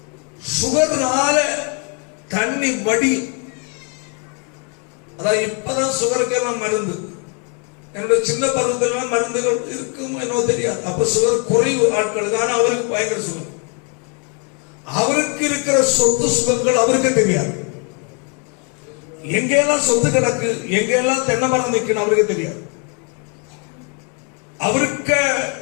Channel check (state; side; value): quieter; right; 36.8 dB